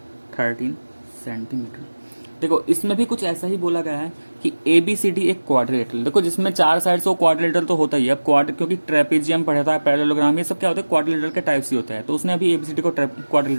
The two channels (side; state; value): both; inverted; correlation -1.00